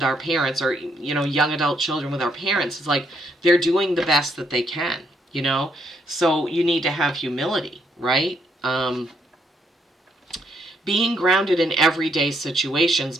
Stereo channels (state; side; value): normal; both; correlation 0.73